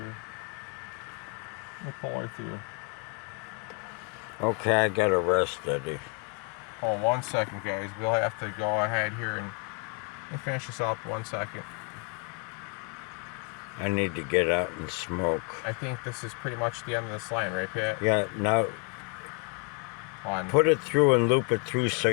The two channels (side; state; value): right; quieter; 34.5 dB